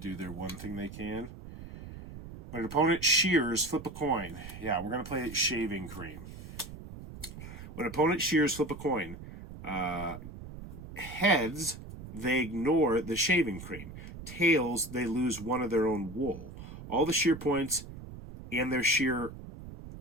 their one thing they can. When an opponent shears, flip a coin. Yeah, we're going to play shaving cream. When an opponent shears, flip a coin. Heads, they ignore the shaving cream. Tails, they lose 1 of their own wool. All the shear points and their shear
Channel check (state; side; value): noise; right; rumble, 13 dB below the sound